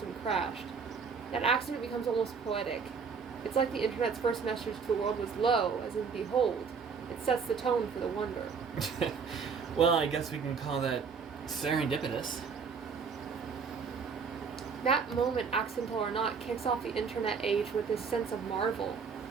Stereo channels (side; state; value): left; quieter; 5.7 dB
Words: crashed. That accident becomes almost poetic. It's like the internet's first message to the world was lo, as in behold. It sets the tone for the wonder. Well, I guess we can call that serendipitous. That moment, accidental or not, kicks off the internet age with this sense of marvel.